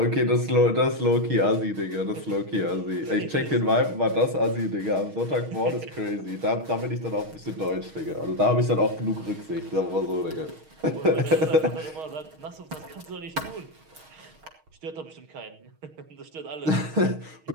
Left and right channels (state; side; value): late; left; 6.4 ms